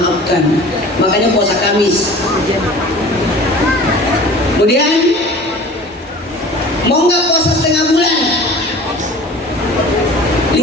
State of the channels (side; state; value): both; normal; correlation 0.43